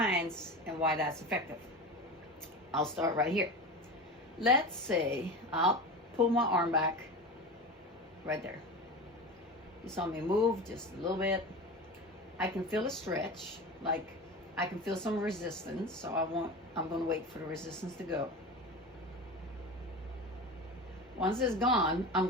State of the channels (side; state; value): both; normal; correlation 0.28